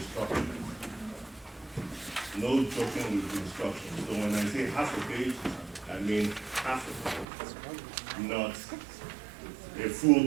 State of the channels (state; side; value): drops out; left; at 7.2 s